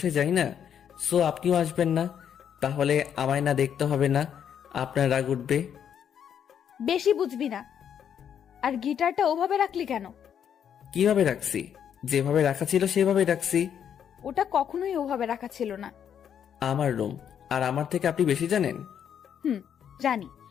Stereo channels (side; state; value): right; quieter; 8.7 dB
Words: যাই না, সো আপনিও আসবেন না। তাহলে আমায় না দেখতে হবে না, আপনার রাগ উঠবে। বেশি বুঝবি না। আর গিটারটা ওভাবে রাখলি কেন? কিভাবে রাখছি? যেভাবে রাখা ছিল সেভাবে রাখছি। ওটা কখনোই ওভাবে রাখা ছিল না। আমার রুম, আর আমার থেকে আপনি বেশি জানেন? জানি,